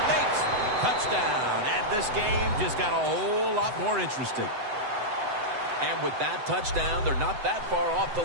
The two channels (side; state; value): left; late; 7.9 ms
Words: Makes touchdown. And this game just got a whole lot more interesting. And with that touchdown, they're not that far off the